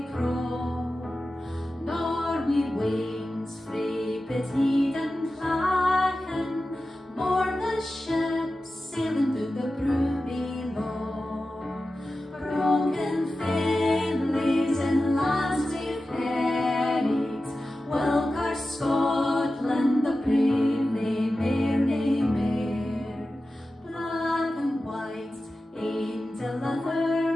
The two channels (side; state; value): both; normal; correlation 0.93